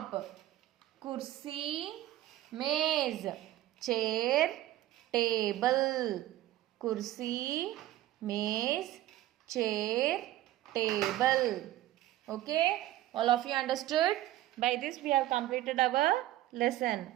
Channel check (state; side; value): quieter; left; 14.8 dB